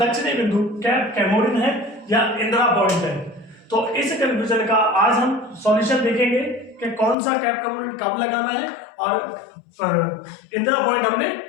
बिंदु कैप कैमोरिन है या इंदिरा पॉइंट है। तो इस कंफ्यूजन का आज हम सॉल्यूशन देखेंगे कि कौन सा कैप कैमोरिन कब लगाना है और इंदिरा पॉइंट हमने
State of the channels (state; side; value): drops out; right; at 7.2 s